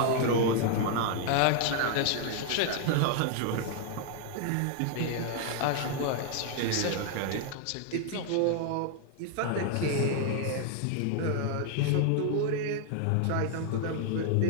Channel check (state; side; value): different; both; correlation 0.00